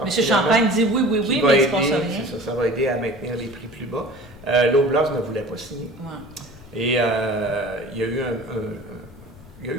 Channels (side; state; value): left; noise; rumble, 22 dB below the sound